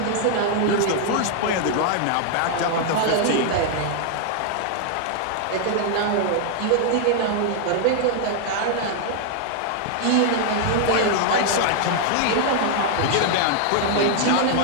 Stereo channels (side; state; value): both; different; correlation 0.00